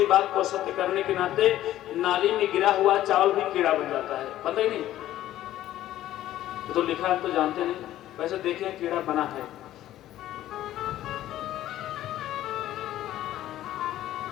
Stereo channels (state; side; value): quieter; right; 13.5 dB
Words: बात को सत्य करने के नाते नाली में गिरा हुआ चावल भी कीड़ा बन जाता है, पता ही नहीं, तो लिखा है तो जानते नहीं, वैसे देखें कीड़ा बना है।